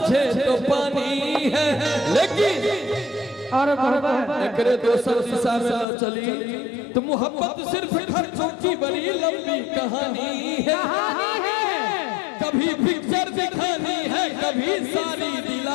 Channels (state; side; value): drops out; right; at 5.9 s